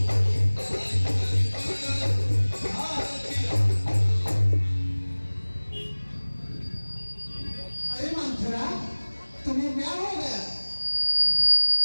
तुम्हें क्या हो गया?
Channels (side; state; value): both; inverted; correlation -1.00